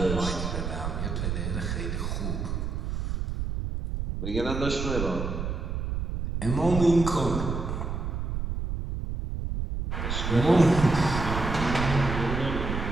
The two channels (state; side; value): noise; right; rumble, 3 dB below the sound